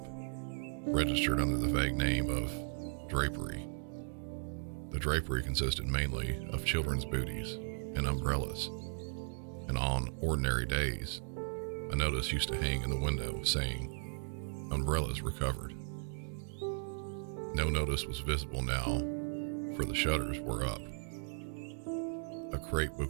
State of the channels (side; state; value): left; silent; digital silence